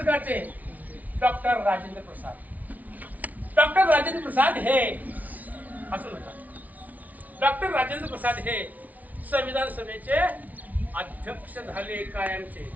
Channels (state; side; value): late; left; 0.074 ms